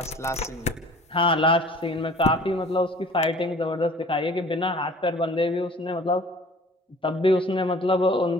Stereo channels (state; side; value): normal; both; correlation 0.48